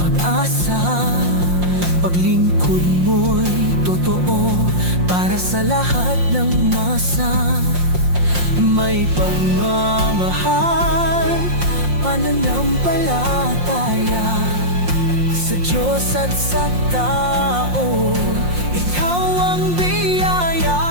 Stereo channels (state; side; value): late; left; 5.6 ms